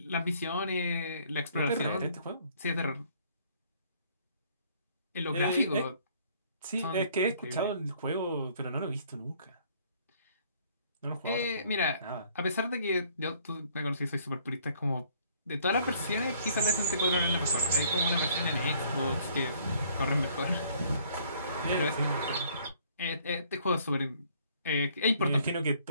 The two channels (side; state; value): both; inverted; correlation -0.61